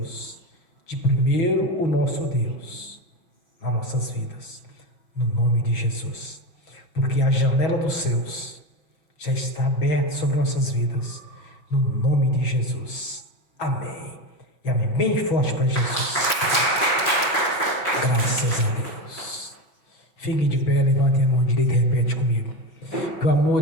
de primeiro o nosso Deus nas nossas vidas, no nome de Jesus. Porque a janela dos céus já está aberta sobre nossas vidas, no nome de Jesus. Amém. E amém. Bem forte para Jesus. Graças a Deus. Fique de pé, levante a mão direita e repete comigo. Que o amor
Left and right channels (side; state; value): right; late; 6.2 ms